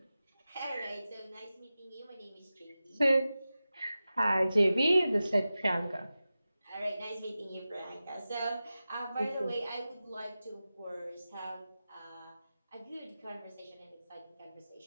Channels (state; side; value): inverted; both; correlation -0.94